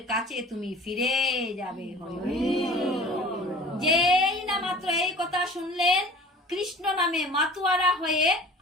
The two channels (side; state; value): both; normal; correlation 0.44